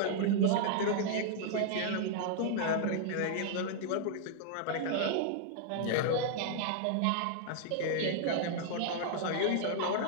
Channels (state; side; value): different; both; correlation -0.01